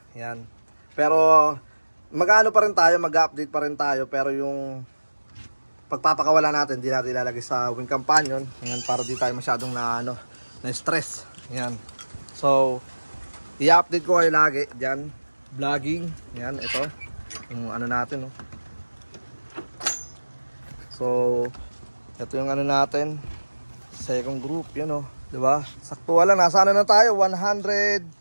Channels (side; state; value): both; inverted; correlation -1.00